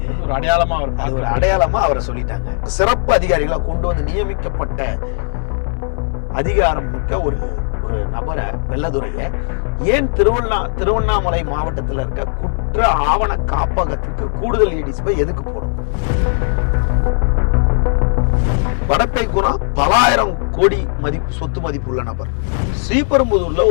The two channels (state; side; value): silent; right; digital silence